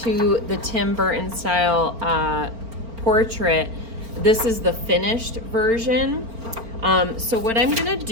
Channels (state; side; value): late; left; 4.4 ms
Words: to the Tim Burton-style portrait, this is the finished version. So what I'm gonna